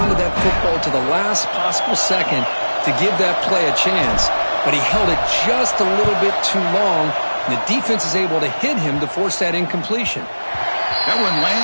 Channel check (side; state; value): both; inverted; correlation -1.00